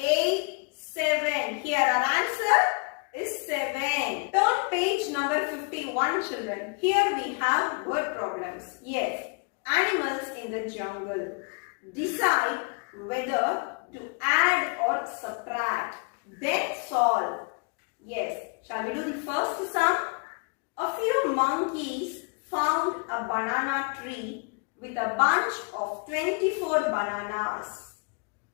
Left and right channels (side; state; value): right; quieter; 34.7 dB